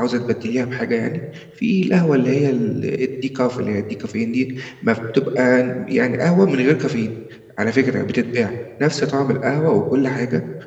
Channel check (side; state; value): both; identical; correlation 1.00